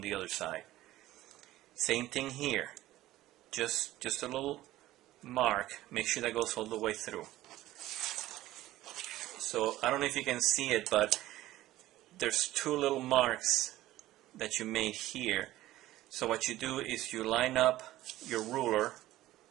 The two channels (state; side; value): quieter; left; 15.6 dB